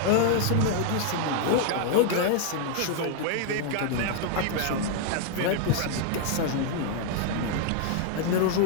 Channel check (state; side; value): different; both; correlation 0.00